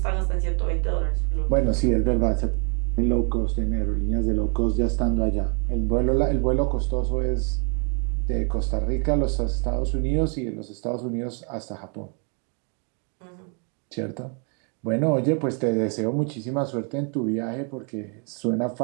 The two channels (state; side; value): quieter; left; 38.2 dB